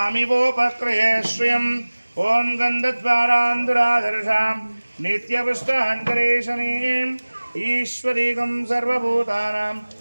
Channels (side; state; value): both; inverted; correlation -1.00